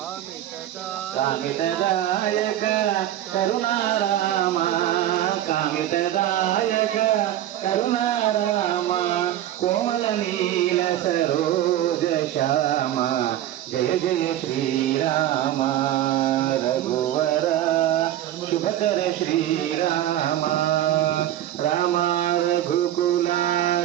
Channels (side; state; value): left; quieter; 12.6 dB